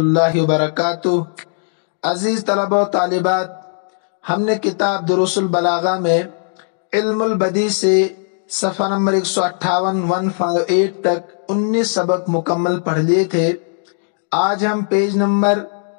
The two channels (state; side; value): silent; right; digital silence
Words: وبرکاتہ۔ عزیز طلبہ و طالبات، ہم نے کتاب دروس البلاغہ میں علم البدیع سے صفحہ نمبر 158 تک 19 سبق مکمل پڑھ لیے تھے۔ آج ہم پیج نمبر